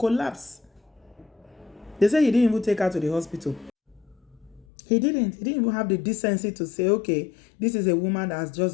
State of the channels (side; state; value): right; drops out; at 4.7 s